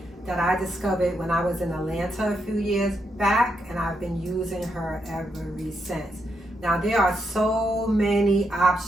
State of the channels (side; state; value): both; normal; correlation 0.81